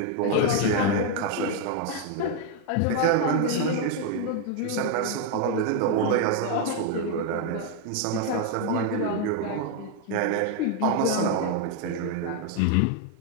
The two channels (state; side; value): different; both; correlation 0.01